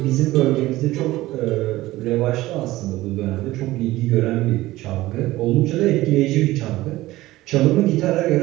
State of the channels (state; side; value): quieter; left; 17.3 dB